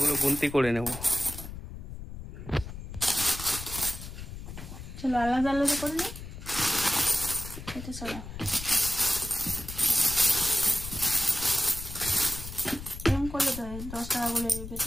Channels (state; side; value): noise; left; rumble, 10 dB below the sound